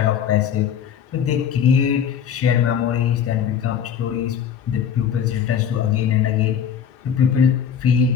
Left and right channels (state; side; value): quieter; right; 8.1 dB